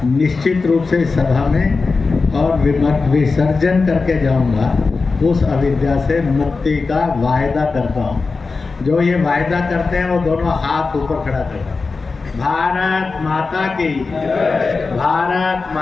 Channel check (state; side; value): quieter; right; 4.2 dB